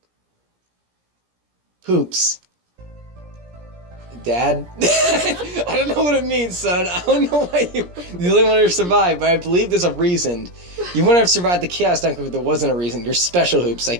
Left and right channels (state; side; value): late; left; 17 ms